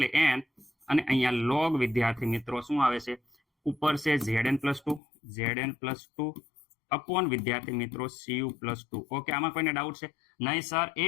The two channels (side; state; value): right; drops out; at 5.0 s